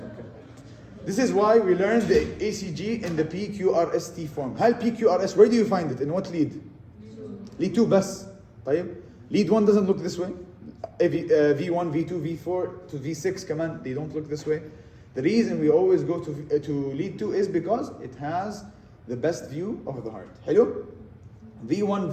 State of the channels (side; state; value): both; identical; correlation 1.00